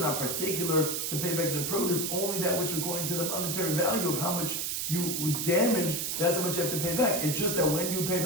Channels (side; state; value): right; noise; hiss, 1 dB below the sound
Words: particular to pay back the produce, only that which according to the monetary value of how much you would damage, that's how much you have to pay back. It's just that when you pay